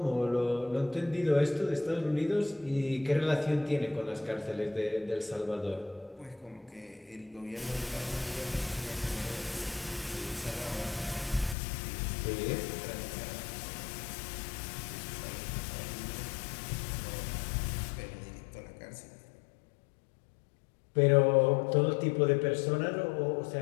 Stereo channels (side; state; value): right; drops out; at 11.6 s